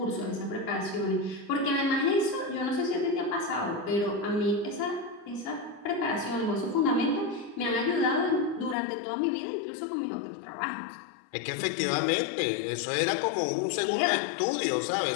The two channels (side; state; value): right; drops out; at 8.8 s